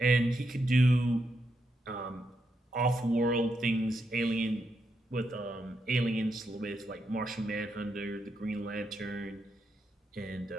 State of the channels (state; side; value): normal; both; correlation 0.82